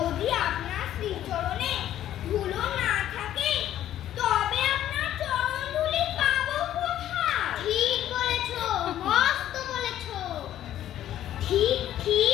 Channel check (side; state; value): right; quieter; 12.0 dB